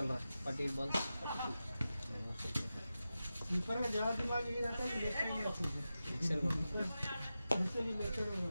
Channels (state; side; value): inverted; both; correlation -0.92